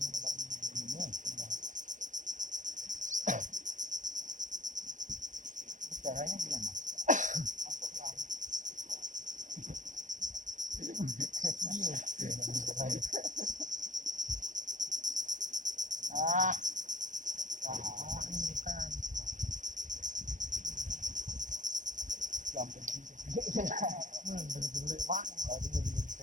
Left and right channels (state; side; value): late; left; 0.37 ms